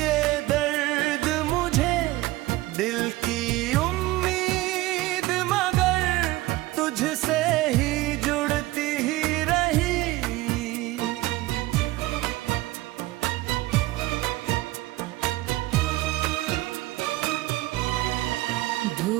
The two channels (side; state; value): left; quieter; 18.4 dB